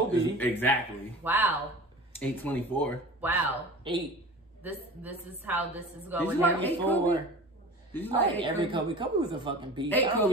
Exactly. Wow. 824. Wow. 8. This is how this is Did going. you like 8 4. Kobe? Did you I like like 8 every Kobe? Kobe. Kobe was a fucking beast. 8 I don't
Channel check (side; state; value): both; normal; correlation 0.37